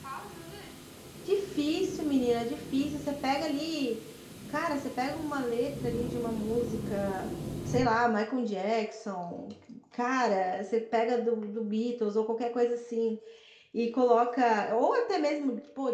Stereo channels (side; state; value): both; identical; correlation 1.00